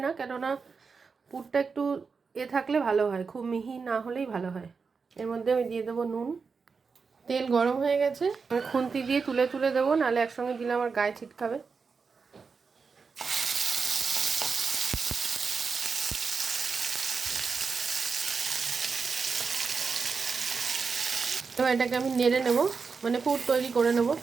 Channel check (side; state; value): left; quieter; 5.1 dB